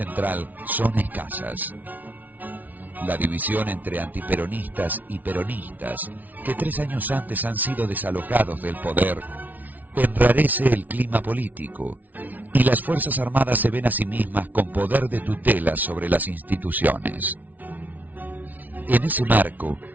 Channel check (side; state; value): left; late; 0.078 ms